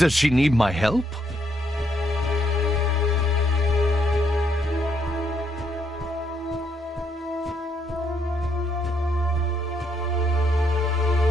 she need my help?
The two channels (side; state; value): both; normal; correlation 0.74